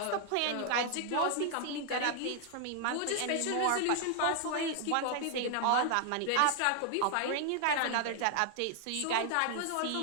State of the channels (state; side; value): different; both; correlation 0.00